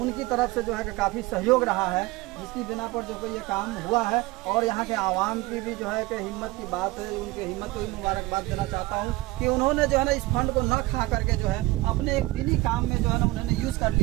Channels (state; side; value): quieter; left; 20.6 dB